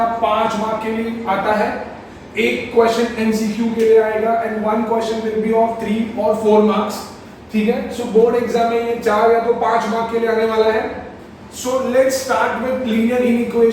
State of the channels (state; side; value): identical; both; correlation 1.00